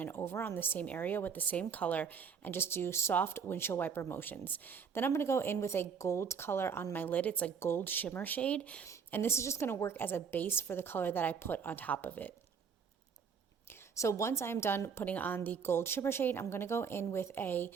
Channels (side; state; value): left; quieter; 6.4 dB